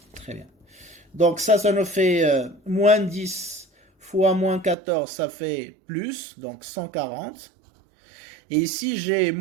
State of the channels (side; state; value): left; drops out; at 4.8 s